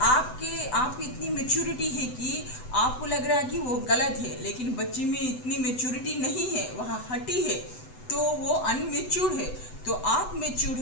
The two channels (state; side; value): late; right; 8.0 ms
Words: इतनी मेच्योरिटी है कि आपको लग रहा है कि वो गलत है, लेकिन बच्ची में इतनी मेच्योरिटी नहीं है, वह हटी है, तो वो अनमेच्योर है। तो आप मेच्योर